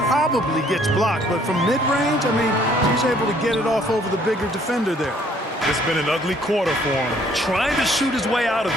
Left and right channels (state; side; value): normal; both; correlation 0.62